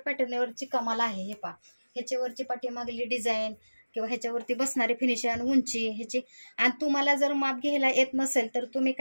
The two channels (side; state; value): both; inverted; correlation -1.00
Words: कमाल आहे, हे पहा ह्याच्यावरची पाठीमागली डिझाईन किंवा ह्याच्यावरती बसणारी फिनिशिंग, उंची ह्याची। आणि तुम्हाला जर माप घ्यायला येत नसेल तर तुम्ही